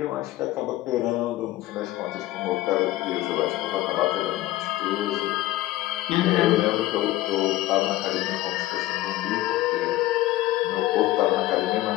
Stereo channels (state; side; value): quieter; right; 16.3 dB